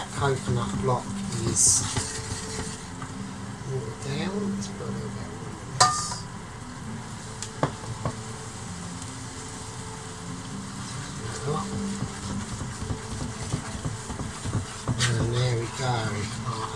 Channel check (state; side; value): identical; both; correlation 1.00